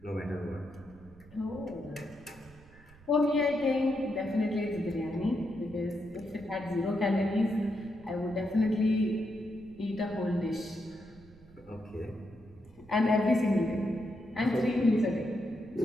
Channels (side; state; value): right; noise; rumble, 24 dB below the sound